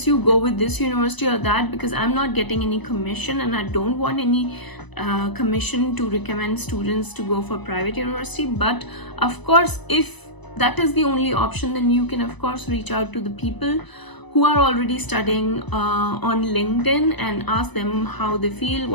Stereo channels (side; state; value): right; late; 1.0 ms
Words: you go with this university or that, because I'm not getting any commission and I don't want any commission to recommend students to go for private university. But of course, if that is the only option, then you can of course reach out to the people who are already studying on LinkedIn and ask them how they feel,